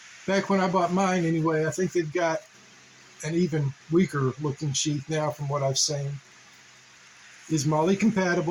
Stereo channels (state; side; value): identical; both; correlation 1.00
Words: back when I bought mine anyway, I think they've got an even weaker looking sheath now from what I've seen, is Moller